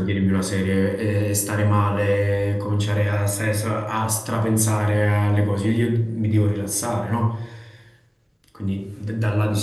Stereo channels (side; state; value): both; identical; correlation 1.00